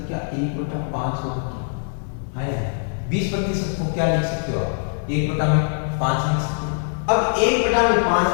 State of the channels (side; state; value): right; silent; digital silence